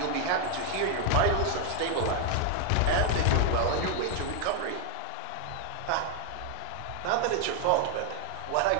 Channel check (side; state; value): both; different; correlation 0.01